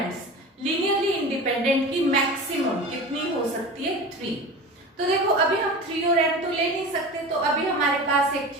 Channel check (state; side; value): normal; both; correlation 0.32